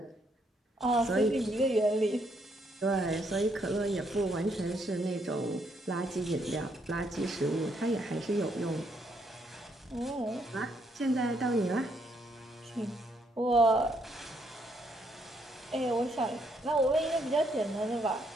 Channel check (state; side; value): normal; both; correlation 0.73